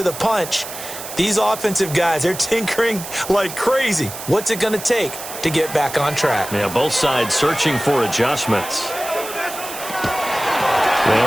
the punch. These offensive guys, they're tinkering like crazy. What's it going to take to get back on track? Yeah, both sides searching for adjustments.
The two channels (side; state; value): right; noise; hiss, 10 dB below the sound